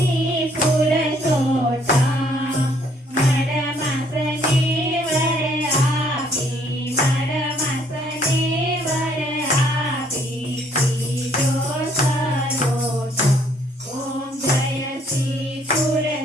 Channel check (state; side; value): normal; both; correlation 0.64